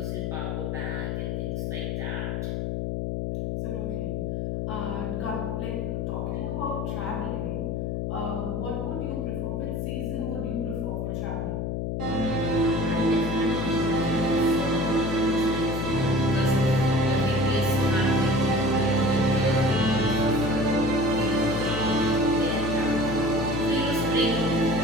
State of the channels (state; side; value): noise; left; hum, 1 dB below the sound